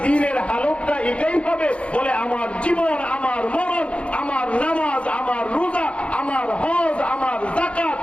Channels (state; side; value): late; right; 0.061 ms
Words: দিনের হালতটা এটাই হবে, বলে আমার জীবন, আমার মরণ, আমার নামাজ, আমার রোজা, আমার হজ, আমার যাকাত,